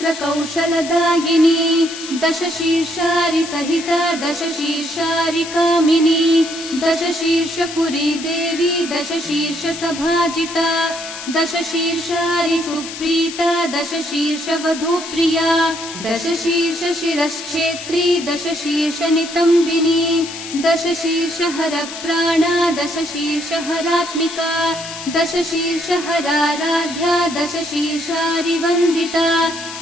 दशशीर्षारि सहिता दशशीर्षारि कामिनी दशशीर्षपुरी देवी दशशीर्षसभाजिता दशशीर्षारि सुप्रीता दशशीर्षवधूप्रिया दशशीर्षशिरश्छेत्री दशशीर्षनितम्बिनी दशशीर्षहरप्राणा दशशीर्षहरात्मिका दशशीर्षहराराध्या दशशीर्षारिवन्दिता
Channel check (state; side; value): noise; left; hiss, 10 dB below the sound